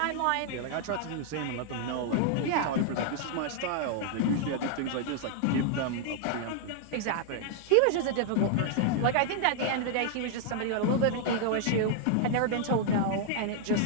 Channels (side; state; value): both; different; correlation 0.00